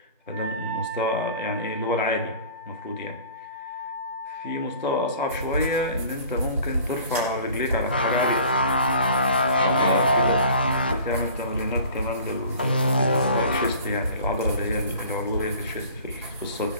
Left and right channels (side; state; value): both; inverted; correlation -0.47